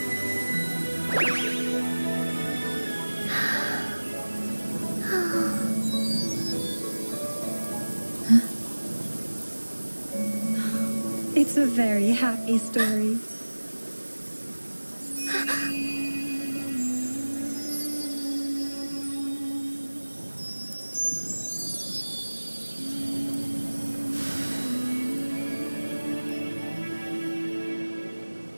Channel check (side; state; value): both; inverted; correlation -1.00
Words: It's a very happy story.